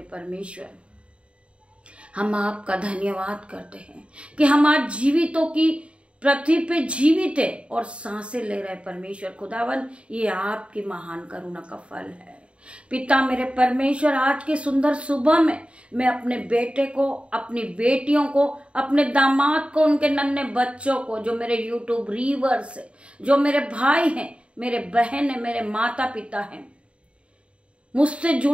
परमेश्वर। हम आपका धन्यवाद करते हैं कि हम आज जीवितों की पृथ्वी पे जीवित है और सांसें ले रहे परमेश्वर खुदावन। ये आपकी महान करुणा का फल है। पिता मेरे परमेश्वर, आज की सुंदर सुबह में मैं अपने बेटे को, अपनी बेटियों को, अपने दामाद को, उनके नन्हे बच्चों को, जो मेरे यूट्यूब रीवर्स है, जो मेरे भाई हैं, मेरे बहन है, मेरे माता पिता हैं, मुझसे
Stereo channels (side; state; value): left; late; 0.059 ms